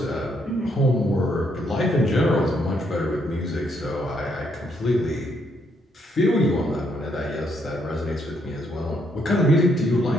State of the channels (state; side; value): normal; both; correlation 0.74